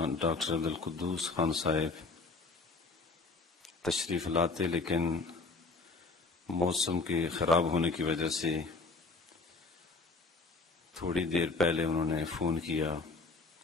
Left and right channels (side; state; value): right; quieter; 3.9 dB